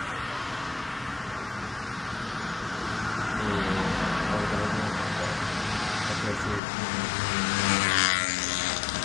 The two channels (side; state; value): right; drops out; at 6.6 s